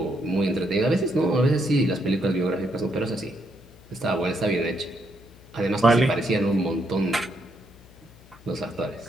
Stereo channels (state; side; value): noise; left; hum, 24 dB below the sound